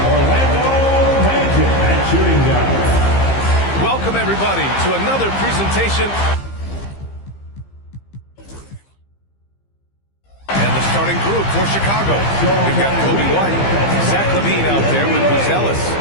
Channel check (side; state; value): right; late; 15 ms